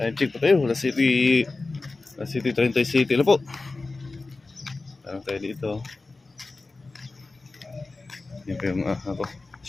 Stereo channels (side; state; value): right; quieter; 3.5 dB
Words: check pa tayo. Last City 30 City na po. Tanong tayo dito. Yan po yung